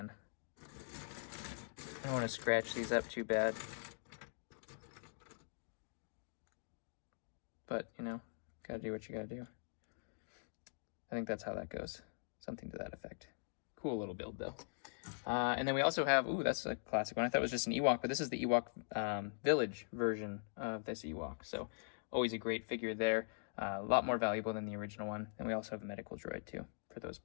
I don't want to scratch these up too bad. But, you know, gotta do what you gotta do. I think that's how that goes. Something to that effect. Cool little build, though. And then we also have, ooh, that's a classic one. I thought it was just an Ewok, but this is the Ewok village version of this Ewok. So always a great figure there. A lot more valuable than the original one. And we also have a medical droid, too, for those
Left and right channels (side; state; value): right; silent; digital silence